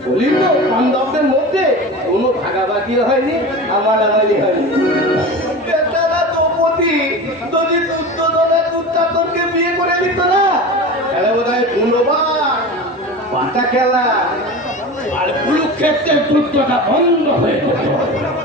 বলি তো পাঞ্জাবদের মধ্যে কোনো ভাগাভাগি হয়নি আমারি হয়নি বেচারা দ্রৌপদী যদি দুর্যোধনের পাল্টা খেলা আর কুরুক্ষেত্রের যুদ্ধটা বন্ধ হয়ে যেত।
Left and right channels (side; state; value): both; normal; correlation 0.31